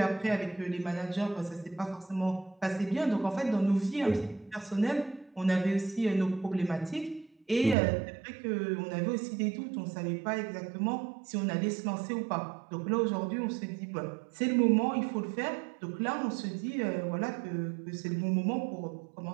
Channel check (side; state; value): left; drops out; at 7.8 s